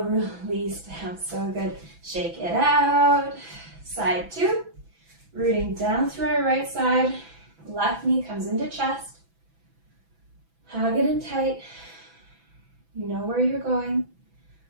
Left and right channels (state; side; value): late; left; 6.0 ms